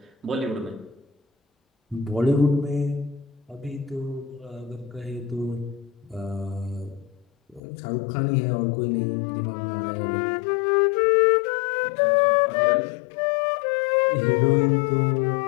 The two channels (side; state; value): right; drops out; at 7.6 s